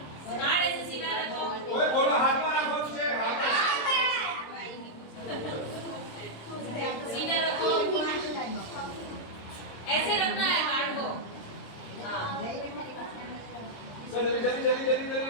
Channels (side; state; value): right; late; 26 ms